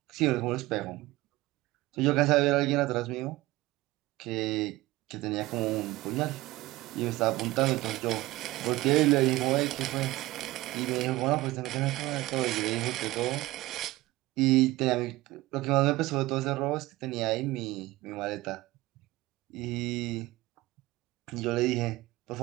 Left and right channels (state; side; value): quieter; left; 18.7 dB